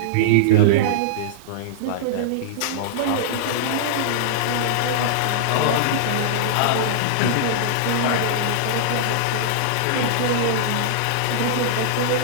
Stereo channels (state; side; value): different; both; correlation -0.02